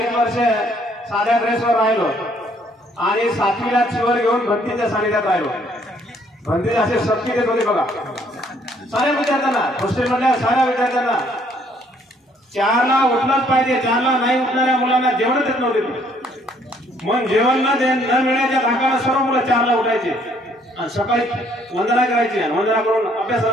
वर्ष साध्या ड्रेसवर राहिलो आणि 7वीला चिवर घेऊन भंतीच्या सानिध्यात राहिलो. भंतीचे असे शक्ती देत होते बघा साऱ्या विद्यार्थ्यांना, हॉस्टेलमधल्या साऱ्या विद्यार्थ्यांना. 4ला उठलंच पाहिजे, 4ला नाही उठणाऱ्या मुलांना जेवण देत नव्हते. मग जेवण न मिळण्याच्या धाकाला सर्व मुलं 4ला उठायचे आणि सकाळी वंदना करायची आणि वंदना करून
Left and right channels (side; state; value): both; normal; correlation 0.64